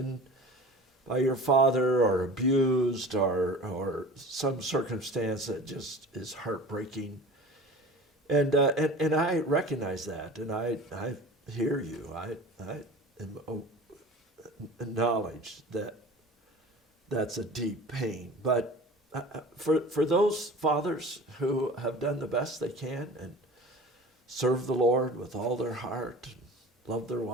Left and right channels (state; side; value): normal; both; correlation 0.39